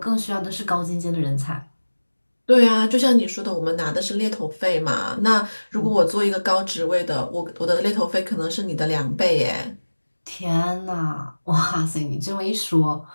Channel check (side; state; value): both; inverted; correlation -1.00